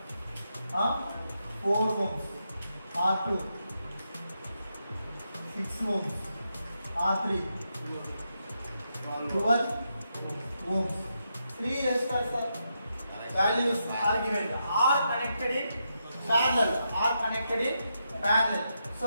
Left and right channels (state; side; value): inverted; both; correlation -0.83